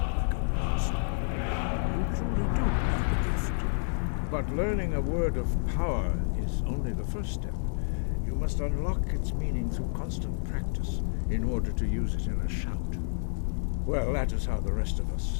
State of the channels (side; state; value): right; silent; digital silence